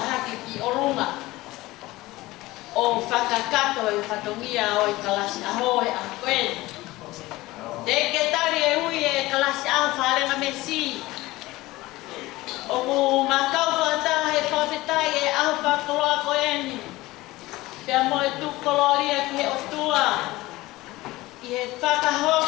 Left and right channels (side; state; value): right; quieter; 19.0 dB